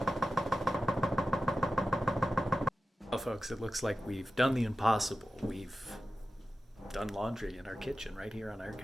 Well, folks, it looks like we've done the impossible. We've done laundry in our kitchen right here on our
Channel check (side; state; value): both; normal; correlation 0.93